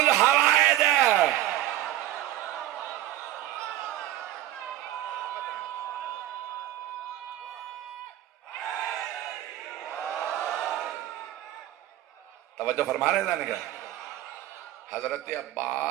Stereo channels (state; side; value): quieter; left; 13.9 dB